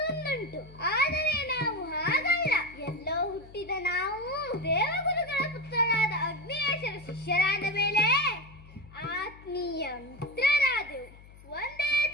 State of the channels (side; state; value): left; noise; hum, 21 dB below the sound